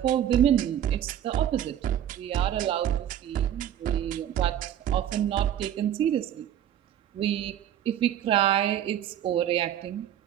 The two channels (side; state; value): left; quieter; 10.6 dB